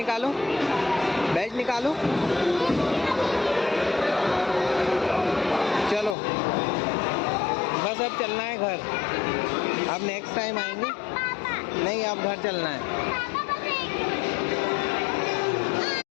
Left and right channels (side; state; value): right; drops out; at 6.2 s